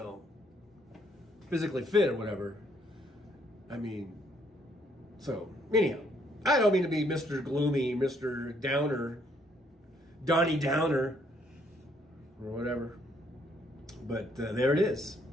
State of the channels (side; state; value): both; normal; correlation 0.68